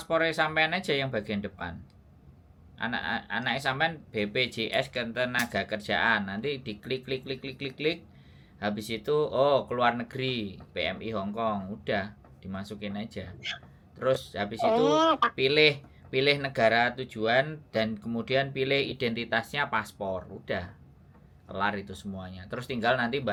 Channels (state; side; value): identical; both; correlation 1.00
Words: sampean aja yang bagian depan. Anak sampean BPJS Ketenagakerjaan. Nanti diklik. Habis itu keluar negeri, PMI Hong Kong, udah dimasukin aja. Terus habis itu pilih negara tujuan dan kemudian pilih identitasnya paspor, udah kelar itu semuanya. Terus tinggal nanti